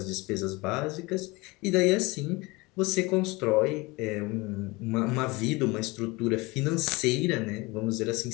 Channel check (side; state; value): right; quieter; 23.9 dB